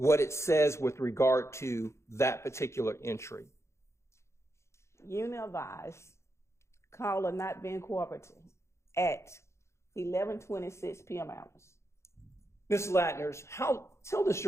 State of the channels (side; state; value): right; late; 0.13 ms